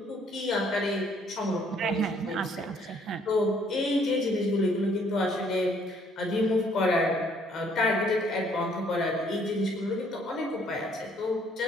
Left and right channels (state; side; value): normal; both; correlation 0.64